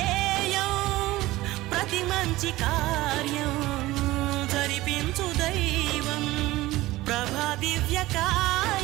ప్రతి మంచి కార్యం జరిపించు దైవం. ప్రభా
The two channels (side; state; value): left; quieter; 18.0 dB